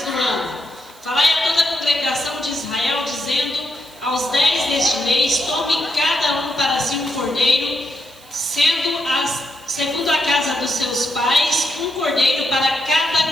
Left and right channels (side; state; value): right; noise; hiss, 25 dB below the sound